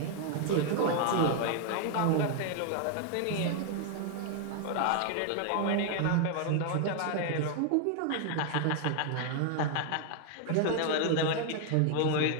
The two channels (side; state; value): both; different; correlation 0.00